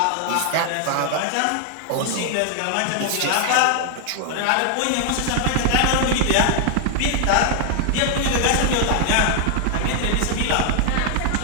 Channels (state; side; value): different; both; correlation 0.00